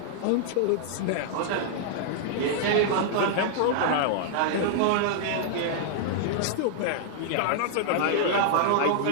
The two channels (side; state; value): both; different; correlation -0.01